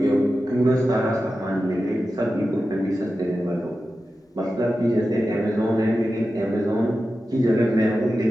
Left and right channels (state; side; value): normal; both; correlation 0.92